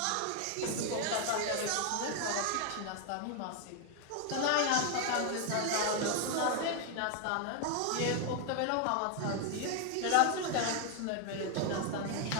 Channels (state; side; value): different; both; correlation 0.01